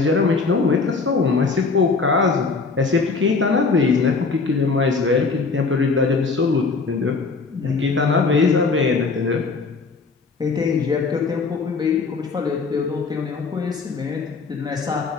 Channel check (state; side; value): quieter; right; 4.4 dB